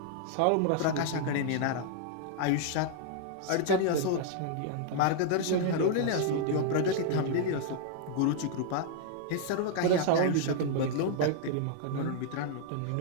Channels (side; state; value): both; different; correlation 0.00